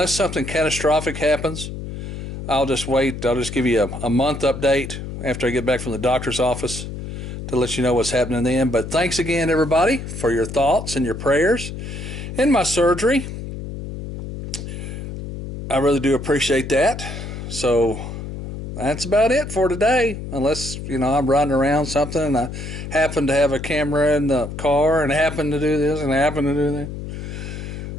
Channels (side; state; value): left; noise; hum, 8 dB below the sound